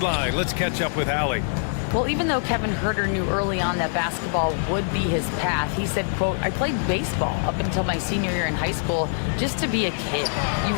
let's catch up with Allie. Well, even though Kevin Huerter knew early on that basketball would be his path, he said, quote, I played baseball up until my senior year in high school just to be a kid. You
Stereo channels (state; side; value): silent; right; 63 dB below the other